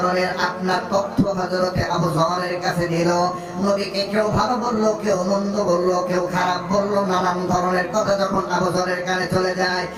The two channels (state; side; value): identical; both; correlation 1.00